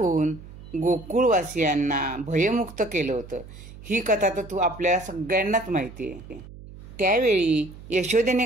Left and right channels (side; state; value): right; noise; hum, 17 dB below the sound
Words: गोकुळवासियांना भयमुक्त केलं होतं. ही कथा तर आपल्याला सगळ्यांनाच माहिती आहे. त्यावेळी यशोदेने